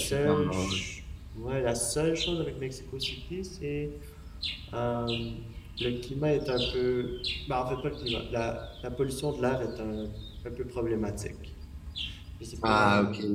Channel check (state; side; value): identical; both; correlation 1.00